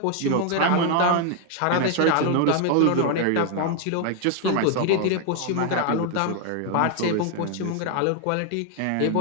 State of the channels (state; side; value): different; both; correlation 0.00